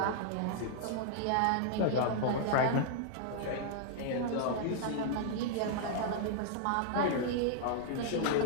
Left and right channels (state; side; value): different; both; correlation -0.01